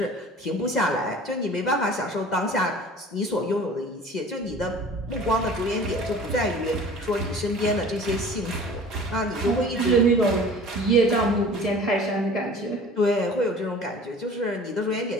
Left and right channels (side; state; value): both; normal; correlation 0.44